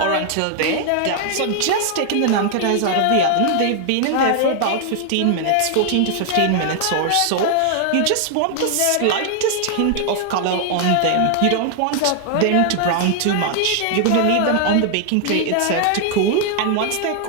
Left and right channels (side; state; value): both; different; correlation 0.00